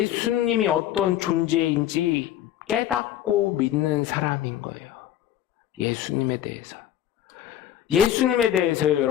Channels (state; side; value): quieter; right; 11.6 dB